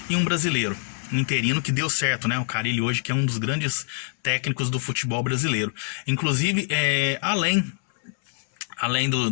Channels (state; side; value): silent; right; 59 dB below the other